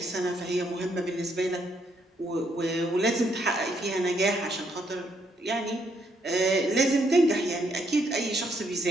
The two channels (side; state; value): both; normal; correlation 0.73